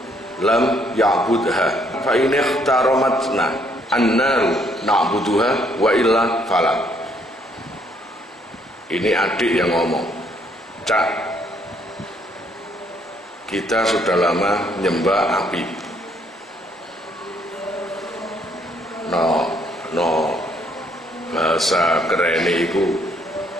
lam ya'budha fa in ikhtaramatna annaru na'buduha wa illa fala. Ini adik yang ngomong. Cak, kita sudah lama nyembah api. No bahasa kerene iku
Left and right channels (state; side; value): normal; both; correlation 0.68